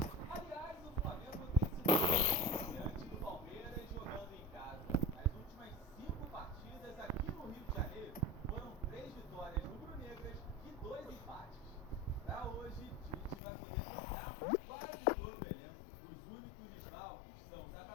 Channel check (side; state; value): right; drops out; at 13.4 s